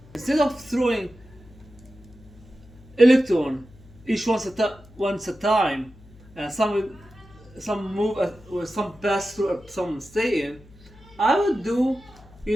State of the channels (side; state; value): left; noise; hum, 23 dB below the sound